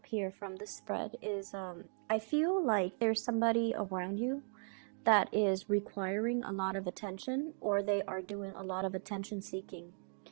here from the spread is I feel like there's somebody around you that is requiring a lot of attention, or they are doing a lot of attention seeking.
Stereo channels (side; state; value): left; silent; 53 dB below the other